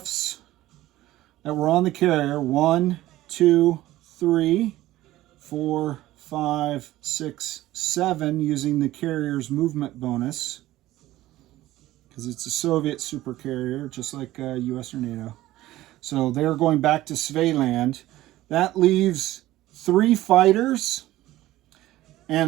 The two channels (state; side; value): quieter; left; 15.9 dB